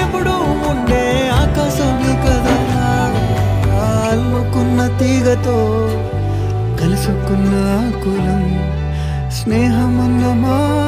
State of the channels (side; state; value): both; identical; correlation 1.00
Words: ఎప్పుడూ ఉండే ఆకాశమే కదా అల్లుకున్న తీగతో కలుసుకున్న కులం స్నేహమన్న